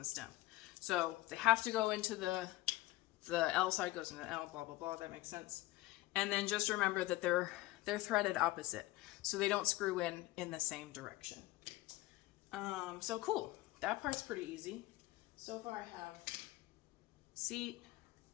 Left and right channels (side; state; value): right; quieter; 18.3 dB